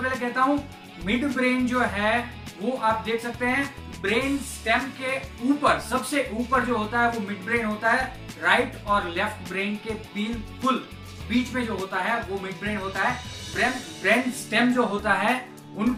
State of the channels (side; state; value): both; identical; correlation 1.00